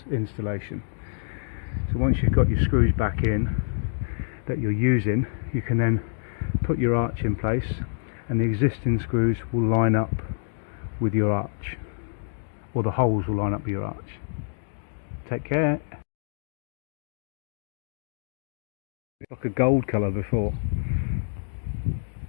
installation. So once you've got your screws back in that you're using, you can then put your arch in place, and the existing screws will line up with your arch, or the holes will line up with your arch. Take care. It's like a gold colour before.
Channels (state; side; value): silent; right; digital silence